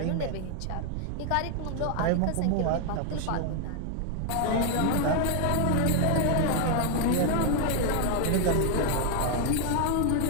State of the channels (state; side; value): different; both; correlation 0.00